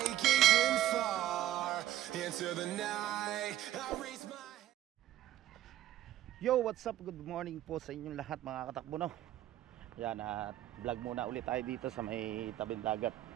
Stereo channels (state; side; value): quieter; left; 13.0 dB